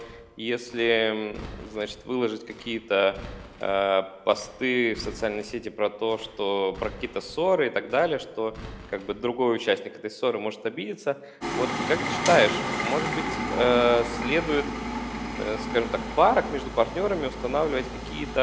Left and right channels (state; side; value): identical; both; correlation 1.00